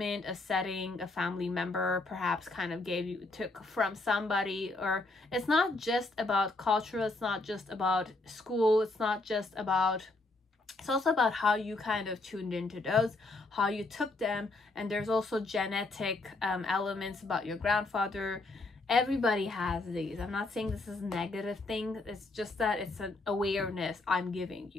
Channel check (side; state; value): right; quieter; 3.1 dB